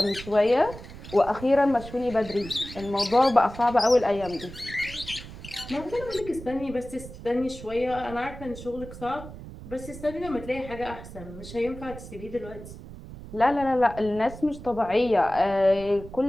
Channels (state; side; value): noise; right; rumble, 14 dB below the sound